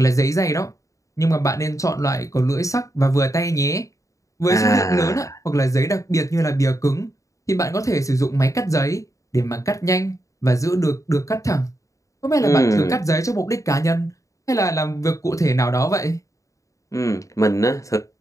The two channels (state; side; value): late; right; 0.16 ms